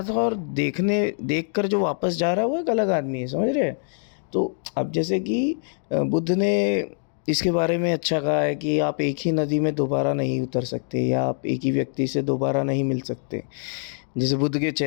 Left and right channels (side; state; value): right; silent; digital silence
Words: था, और देख कर जो वापस जा रहा है वो एक अलग आदमी है, समझ रहे हैं? तो अब जैसे कि बुद्ध ने इसके बारे में अच्छा कहा है कि आप एक ही नदी में दोबारा नहीं उतर सकते, या आप एक ही व्यक्ति से दोबारा नहीं मिल सकते। जैसे बुद्ध के